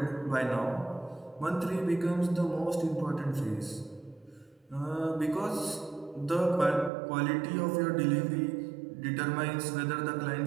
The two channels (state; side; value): drops out; left; at 6.9 s